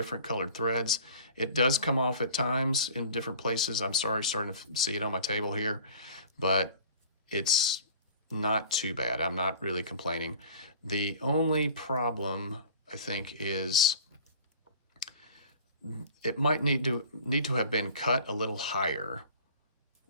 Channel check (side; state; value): both; inverted; correlation -0.45